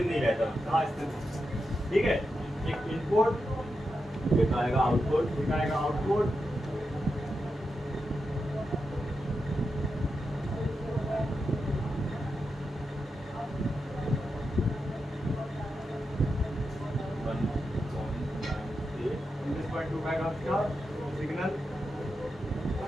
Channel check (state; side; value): normal; both; correlation 0.88